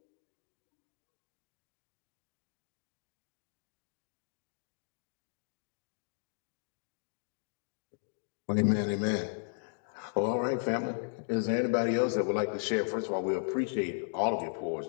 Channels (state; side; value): silent; right; digital silence